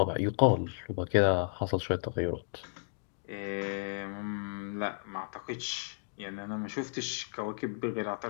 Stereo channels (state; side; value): silent; right; digital silence